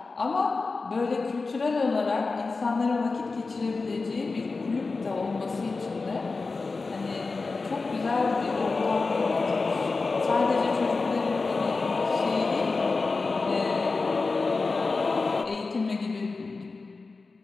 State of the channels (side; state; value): right; quieter; 4.0 dB